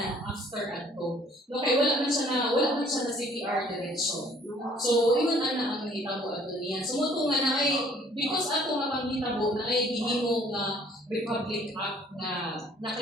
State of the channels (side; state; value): both; normal; correlation 0.58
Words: after ato. No, kay wala man siya na CPR diretso. So iyon ana ang nahitabo ato niya. So mo nga na ay because ato nga panghitabo na ay gihimo nga Republic Act na